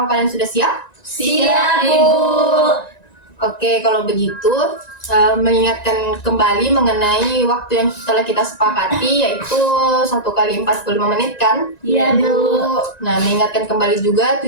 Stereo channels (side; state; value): right; late; 1.9 ms